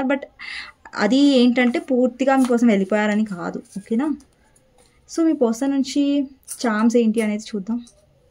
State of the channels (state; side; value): identical; both; correlation 1.00